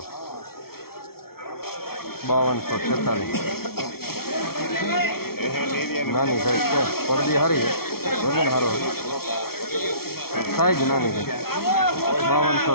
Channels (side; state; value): right; late; 0.94 ms